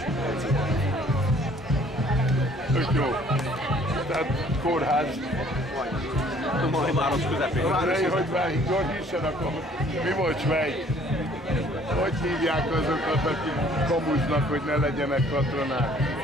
edző. Tök jó. Tehát kórház. Majd város közepén. Hogy válik, gyorsan akkor mi volt Svej? Hogy hívják azokat, akik kamuznak, hogy ne legyenek katonák?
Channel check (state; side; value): normal; both; correlation 0.57